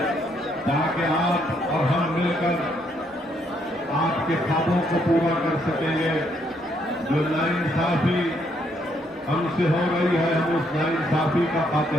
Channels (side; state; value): both; normal; correlation 0.72